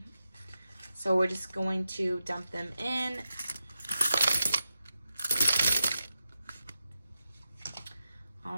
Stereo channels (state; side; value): inverted; both; correlation -0.89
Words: So we're just going to dump them in.